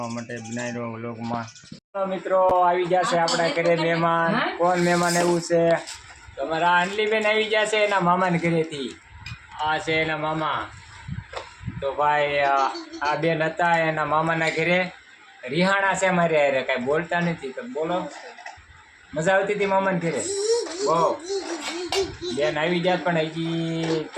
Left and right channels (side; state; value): both; identical; correlation 1.00